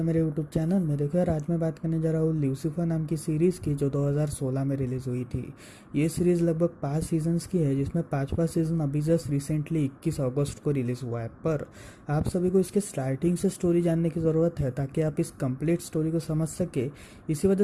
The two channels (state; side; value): identical; both; correlation 1.00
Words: मेरे यूट्यूब चैनल में। देखो यार, आज मैं बात करने जा रहा हूँ ल्यूसीफर नाम की सीरीज़ की, जो 2016 में रिलीज़ हुई थी। ये सीरीज़ लगभग 5 सीजन्स की है, जिसमें 5वां सीज़न अभी जस्ट रिसेंटली 21 अगस्त को रिलीज़ हुआ है। पर आप सभी को इसके स्टार्टिंग से स्टोरी जानने की ज़रूरत है, ताकि आप इस कंप्लीट स्टोरी को समझ सके। इसी वजह